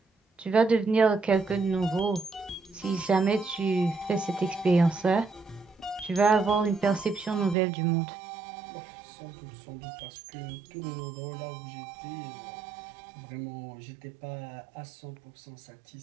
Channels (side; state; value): left; drops out; at 7.6 s